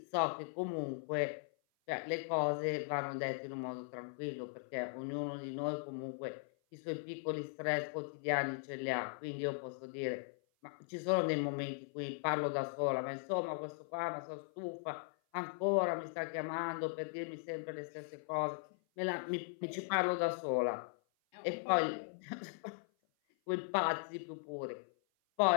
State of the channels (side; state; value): right; silent; 52 dB below the other